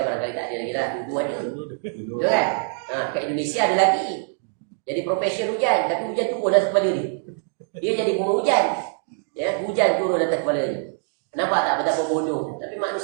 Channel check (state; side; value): silent; left; 60 dB below the other